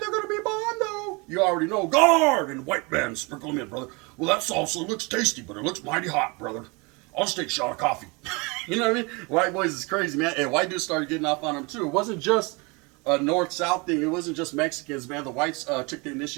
they're gonna be bondo. You already know. Guard and white man, sprinkle them in, brother. Well, that salsa looks tasty, but it looks mighty hot, brother. I'll just take a shot of coffee. You know what I mean? White boys is crazy, man. And white dudes started getting off on them too. It wasn't just a north-south thing. It wasn't just Mexicans, man. The whites took the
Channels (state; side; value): quieter; left; 28.2 dB